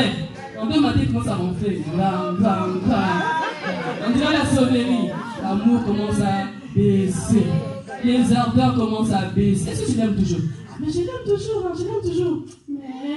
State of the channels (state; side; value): identical; both; correlation 1.00